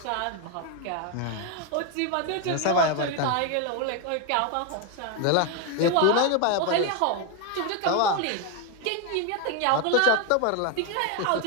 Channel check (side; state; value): both; different; correlation 0.01